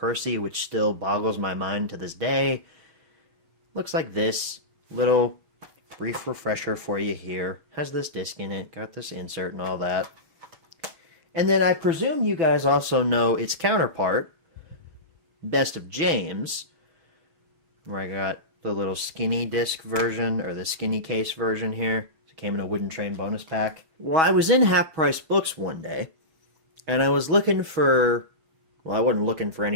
which still boggles my mind to this day. Looks like this. Little brief refresher for you here. Has this disc in it, got this insert and all that. And then I presume you guys also know its counterpart, Best of James, where I got the little skinny disc version, or the skinny case version here. It came in a Wooden Train bonus pack. Well, I was in Half Price Books one day, and I was looking for, well, I wasn't looking for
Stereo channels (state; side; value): late; left; 6.2 ms